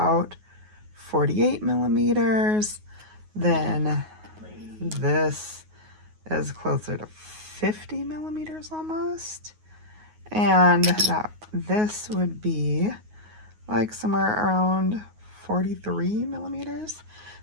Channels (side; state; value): left; late; 9.5 ms